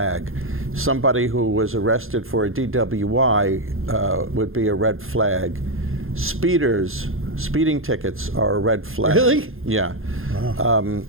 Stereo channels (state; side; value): late; left; 0.60 ms